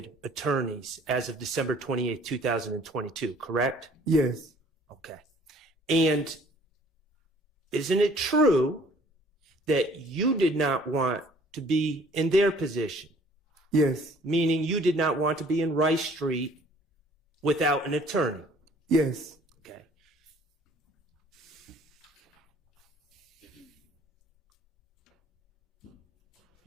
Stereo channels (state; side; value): normal; both; correlation 0.56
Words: attorneys as of December 28, 2022, correct? Yes. Okay. And isn't it true that you did not want to be in their position? Yes. Meaning you did not want to be in Rice Street without an attorney? Yes. Okay.